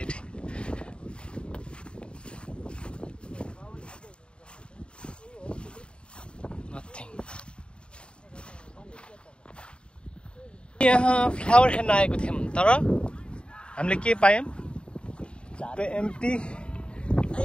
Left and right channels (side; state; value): right; late; 0.054 ms